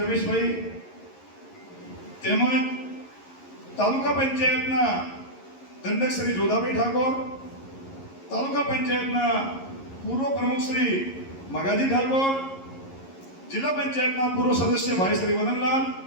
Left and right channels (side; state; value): right; late; 11 ms